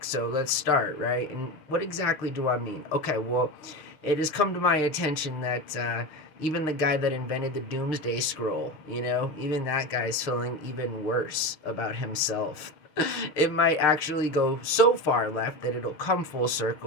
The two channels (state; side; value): late; right; 6.6 ms